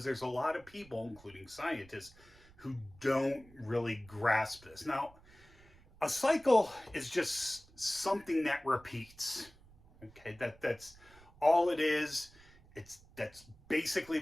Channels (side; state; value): right; noise; rumble, 24 dB below the sound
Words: there's a lot of people, including scientists, who don't really grasp this. Now, a cycle is just something that repeats. Okay, that's all it is. That's basically